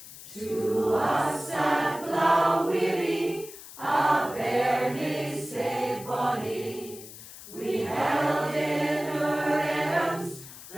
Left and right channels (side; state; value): left; noise; hiss, 15 dB below the sound